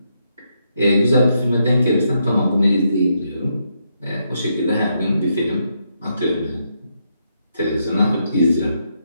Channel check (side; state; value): both; inverted; correlation -0.79